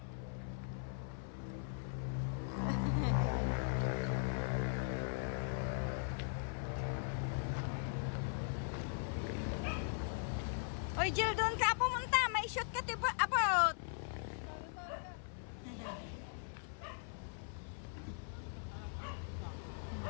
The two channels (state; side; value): silent; right; 51 dB below the other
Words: Oy, Jill, doon ka pumunta. May shortcut about.